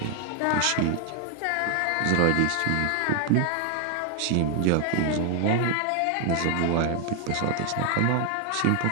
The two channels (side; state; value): both; different; correlation 0.00